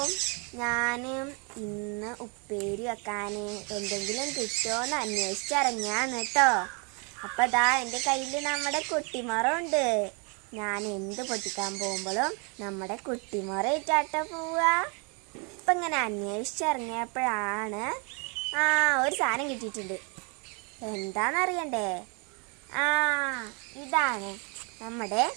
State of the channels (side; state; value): left; quieter; 34.5 dB